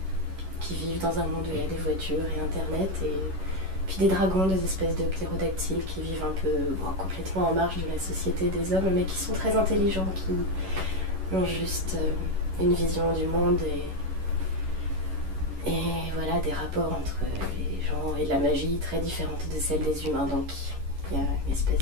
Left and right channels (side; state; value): left; late; 11 ms